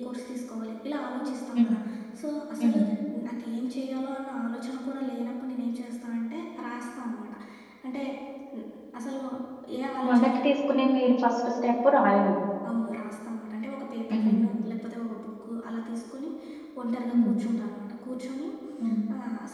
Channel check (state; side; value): identical; both; correlation 1.00